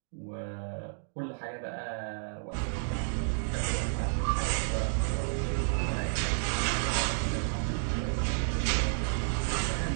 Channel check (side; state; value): left; silent; digital silence